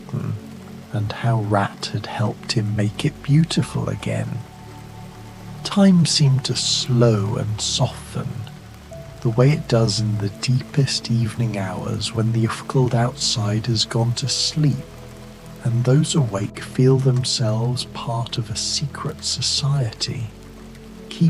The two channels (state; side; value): identical; both; correlation 1.00